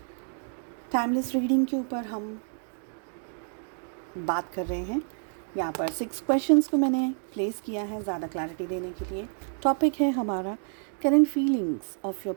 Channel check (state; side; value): silent; left; 55 dB below the other